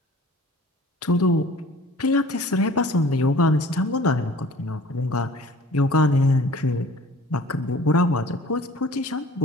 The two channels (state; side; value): normal; both; correlation 0.48